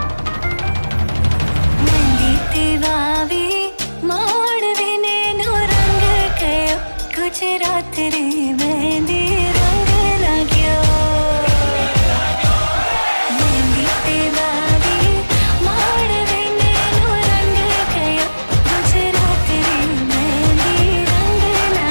माड़वे नैनो रंग गयो गुजरात रे मेहंदी रंग लाग्यो मेहंदी तेरा भी माड़वे नैनो रंग गयो गुजरात रे मेहंदी रंग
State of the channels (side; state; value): both; inverted; correlation -1.00